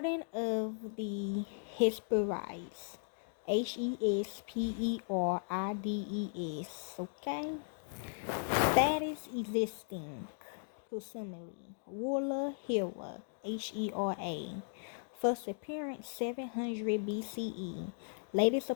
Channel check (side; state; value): right; silent; digital silence